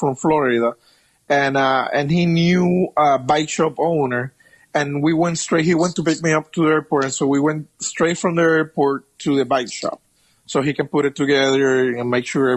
Florida, and he knew a bike shop owner, and we went straight. He went to pick me up to the airport, and so we went straight from the airport to the bike shop, so he can put it together and make sure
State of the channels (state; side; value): identical; both; correlation 1.00